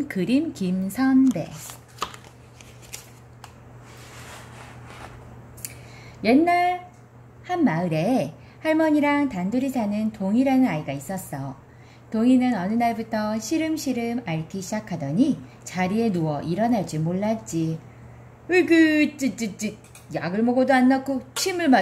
그림 김선배. 옛날 한 마을에 할머니랑 단둘이 사는 동이라는 아이가 있었어. 동이는 어느 날부터 시름시름 앓기 시작하더니 자리에 누워 일어날 줄 몰랐지. 으그 찌찌찌, 약을 먹어도 안 낫고 침을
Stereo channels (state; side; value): identical; both; correlation 1.00